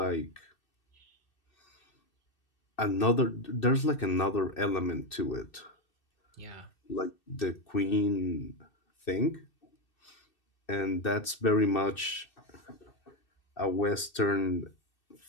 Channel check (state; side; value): late; right; 2.6 ms